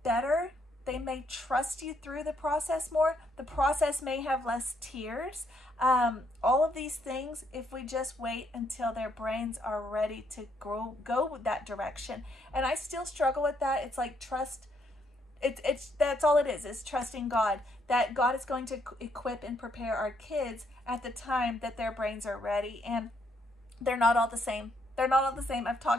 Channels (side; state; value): both; normal; correlation 0.73